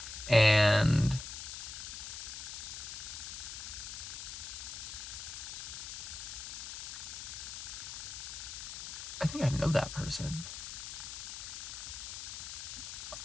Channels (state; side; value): noise; left; hiss, 7 dB below the sound